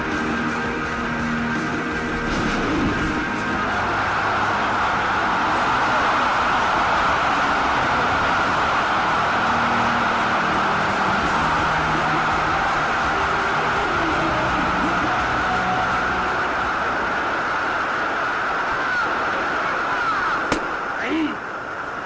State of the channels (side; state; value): both; identical; correlation 1.00